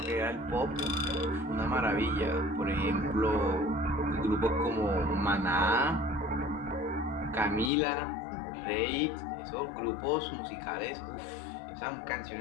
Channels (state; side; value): drops out; right; at 7.7 s